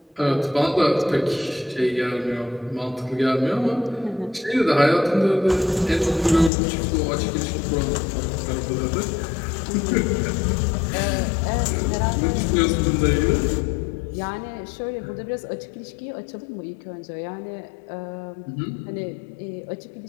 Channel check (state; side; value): drops out; right; at 6.5 s